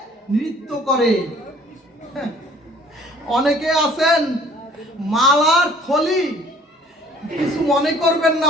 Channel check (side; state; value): both; normal; correlation 0.54